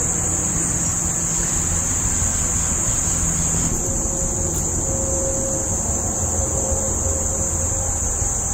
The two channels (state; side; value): identical; both; correlation 1.00